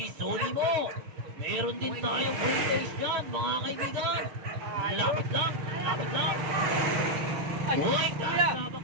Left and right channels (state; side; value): late; left; 6.5 ms